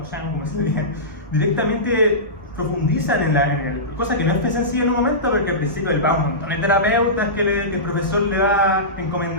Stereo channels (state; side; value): normal; both; correlation -0.18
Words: Shang, como se diría, directamente profundizan en él, cosa que no es sencilla en un momento, porque al principio él va a un montón de terapeutas que el profesor le va